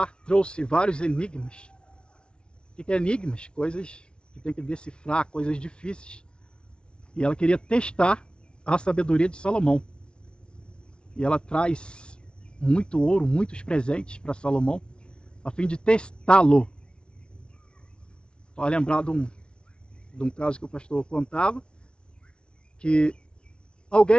trouxe vários enigmas. O que é enigmas? Coisas que tem que decifrar, coisas difíceis. E ela queria testar a sabedoria de Salomão. E ela traz muito ouro, muitos presentes para Salomão, a fim de testá-lo. Vai lembrar de um caso que o pastor contava, que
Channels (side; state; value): right; late; 0.056 ms